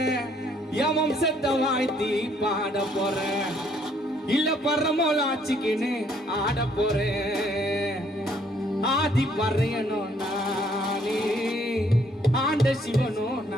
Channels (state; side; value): normal; both; correlation 0.66